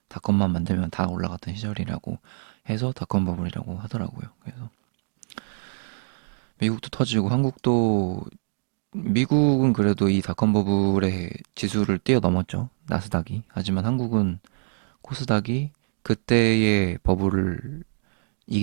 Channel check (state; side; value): silent; left; digital silence